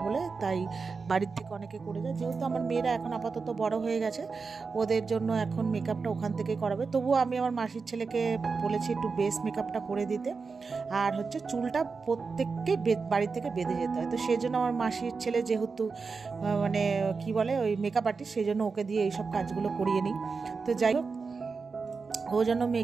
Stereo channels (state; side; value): quieter; left; 4.7 dB